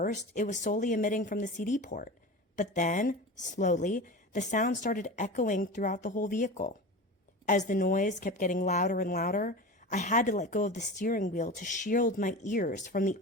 it was solely emitting from the CD port, but then, slowly, the sound started echoing throughout the whole vehicle. As the noise kept getting louder and louder, I had to let go of the steering wheel to shield my ears from the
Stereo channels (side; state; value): both; normal; correlation 0.30